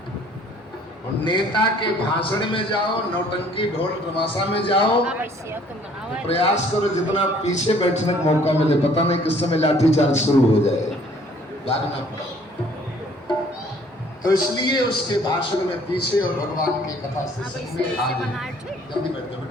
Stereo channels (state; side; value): normal; both; correlation 0.58